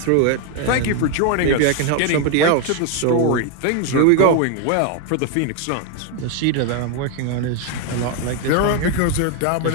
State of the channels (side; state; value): both; different; correlation 0.01